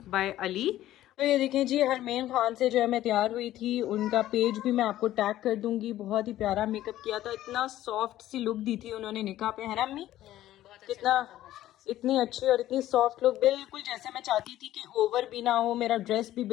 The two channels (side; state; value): right; quieter; 13.9 dB